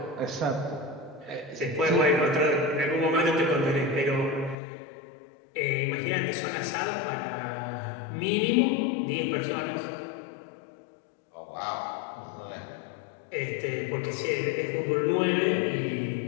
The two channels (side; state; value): right; drops out; at 4.5 s